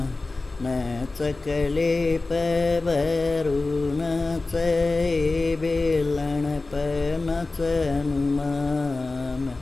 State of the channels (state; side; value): quieter; right; 3.4 dB